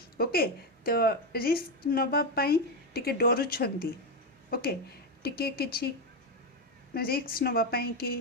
ଓକେ, ତ ରିସ୍କ ନେବା ପାଇଁ ଟିକେ ଡରୁଛନ୍ତି। ଓକେ, ଟିକେ କିଛି ରିସ୍କ ନେବା ପାଇଁ କି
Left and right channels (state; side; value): normal; both; correlation 0.08